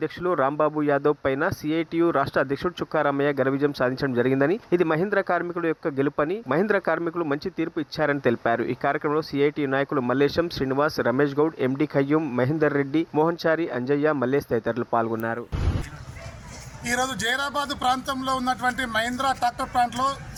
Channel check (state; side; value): identical; both; correlation 1.00